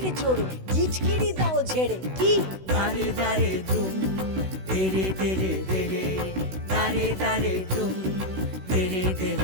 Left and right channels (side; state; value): left; late; 16 ms